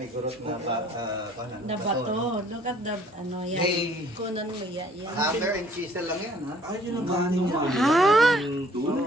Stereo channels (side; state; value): both; normal; correlation 0.58